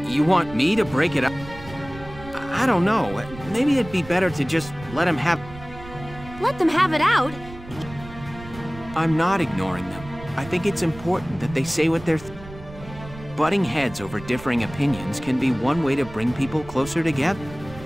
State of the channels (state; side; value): noise; right; rumble, 15 dB below the sound